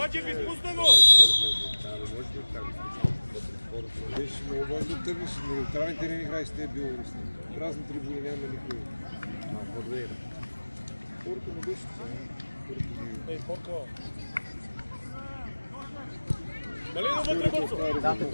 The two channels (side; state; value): both; inverted; correlation -1.00